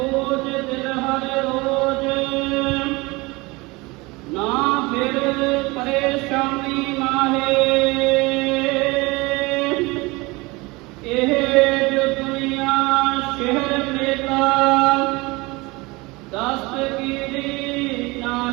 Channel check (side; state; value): left; quieter; 23.8 dB